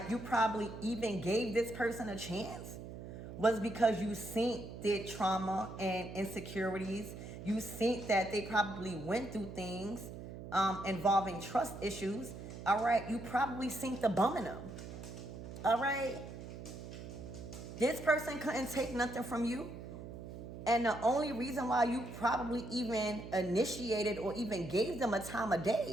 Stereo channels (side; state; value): right; noise; hum, 11 dB below the sound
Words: you probably even gave this person a chance was because you seen their trauma and insecurities. You seen that they probably went through things involving trust issues. All right, you probably seen the bum in them. All right, this person couldn't take nothing from you. And the only reason why you probably even initiated or even gave them a time of